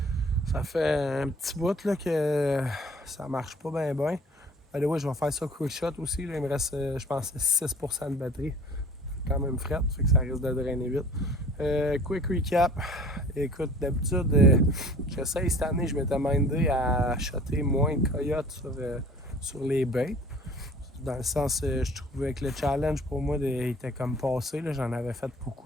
Ça fait un petit bout là, que ça marche pas bien bien. Ouais, je vais faire ça quick shot aussi. Là. Il me reste, je pense, 6% de batterie. Quand même fret, fait que ça risque de drainer vite. Quick recap. Écoute, d'habitude, j'essaye cette année, je m'étais mindé à shotter moins de coyotes sur les baits. Dans le sens, je trouvais que le challenge pour moi était comme passé. Là. J'en avais fait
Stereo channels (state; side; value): normal; both; correlation 0.48